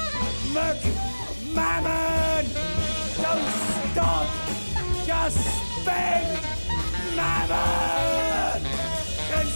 Look, mammon! Don't stop! Just spend! Mammon!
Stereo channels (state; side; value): inverted; both; correlation -1.00